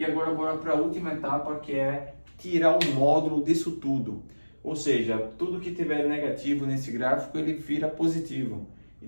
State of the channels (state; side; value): inverted; both; correlation -1.00